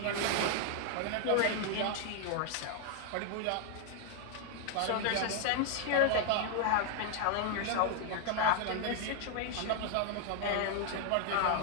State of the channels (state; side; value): different; both; correlation 0.00